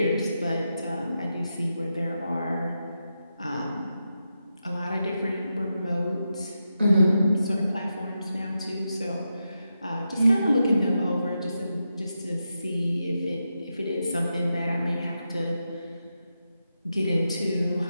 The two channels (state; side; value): inverted; both; correlation -0.88